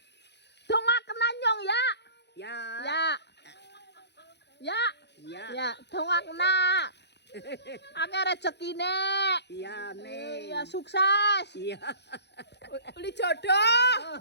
Dongak kena nyong ya. Ya. Ya. Ya. Ya. Ya, dongak kena. Akeh rezekine. Ya, men. Ya sukses. Ya. Uli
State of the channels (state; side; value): late; right; 0.50 ms